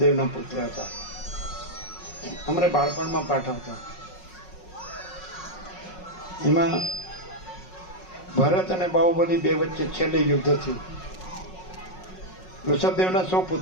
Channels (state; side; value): late; right; 5.5 ms